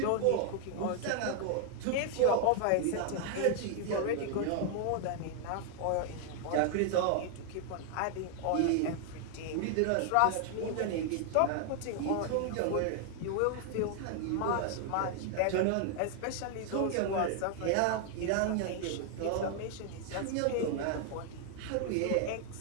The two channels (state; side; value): different; both; correlation 0.00